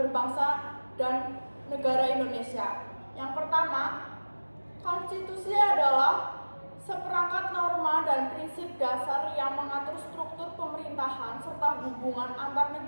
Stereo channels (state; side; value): inverted; both; correlation -1.00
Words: berbangsa dan negara Indonesia. Yang pertama, konstitusi adalah seperangkat norma dan prinsip dasar yang mengatur struktur pemerintahan serta hubungan antar